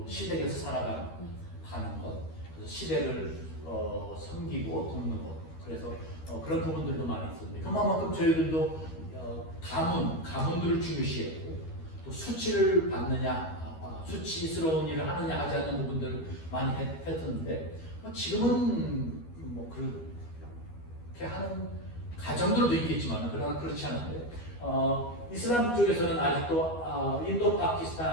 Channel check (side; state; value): right; late; 13 ms